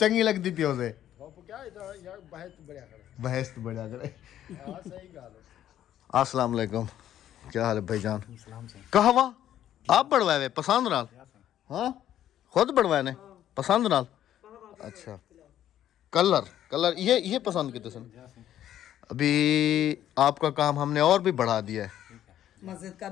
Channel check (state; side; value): quieter; right; 11.5 dB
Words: लगती पियो से बहस तो बढ़िया करे। अस्सलाम वालेकुम, क्या हाल है भाईजान? कहवा आप बढ़वाए पसंद नाल? हाँ खुद बढ़वाए ने पसंद नाल? अच्छा कलर ये पसंद किते सन? अभी आपका काम हमने और भी बढ़ा दिया है। मस्जिद का